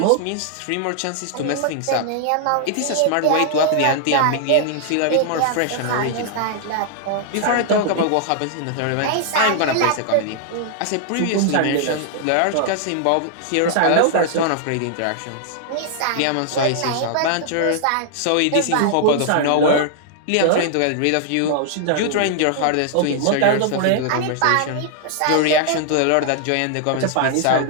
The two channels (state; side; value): different; both; correlation -0.01